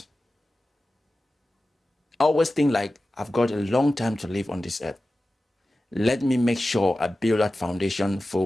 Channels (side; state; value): both; normal; correlation 0.95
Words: I always think like, I've got a long time to live on this earth. Let me make sure I build that foundation